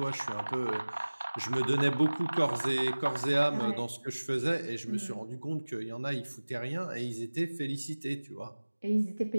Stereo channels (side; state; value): both; inverted; correlation -1.00